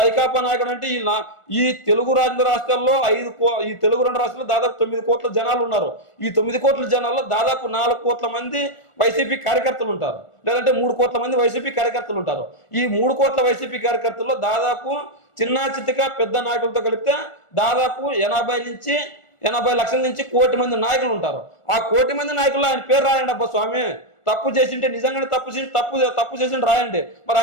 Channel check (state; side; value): late; right; 1.4 ms